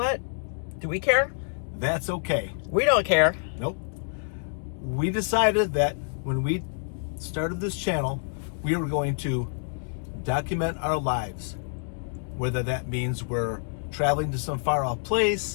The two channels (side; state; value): right; silent; digital silence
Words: Do we care? That's okay. We don't care. Nope. We decided that when we started this channel, we were going to document our lives. Whether that means we're traveling to some far off